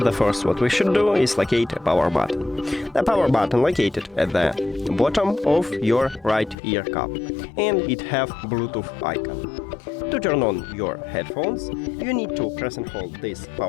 the first what we should do is locate a power button. The power button located at the bottom of your right ear cup, and it have Bluetooth icon. To turn on your headphones, you need to press and hold this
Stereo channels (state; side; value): drops out; right; at 6.6 s